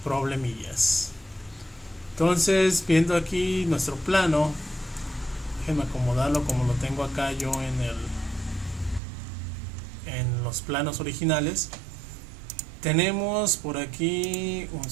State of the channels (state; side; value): drops out; left; at 9.0 s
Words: problemillas. Entonces, viendo aquí nuestro plano, déjenme acomodarlo como lo tengo acá yo en los planos originales. Tenemos por aquí un